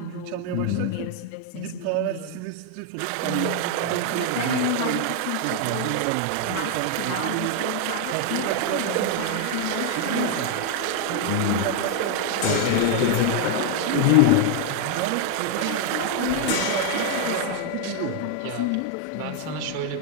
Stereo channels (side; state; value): both; different; correlation 0.00